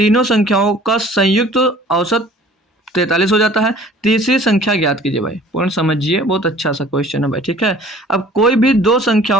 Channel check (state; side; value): normal; both; correlation 0.50